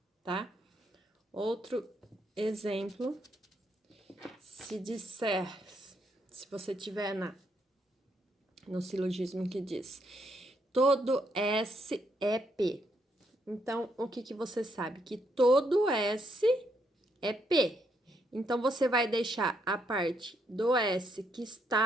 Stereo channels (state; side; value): normal; both; correlation 0.75